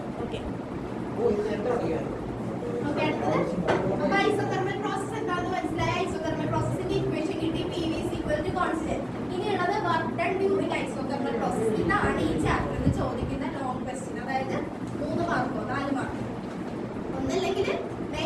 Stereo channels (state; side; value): identical; both; correlation 1.00